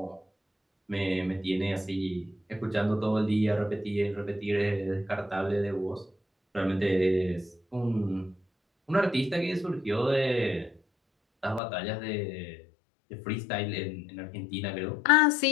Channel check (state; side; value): drops out; right; at 11.6 s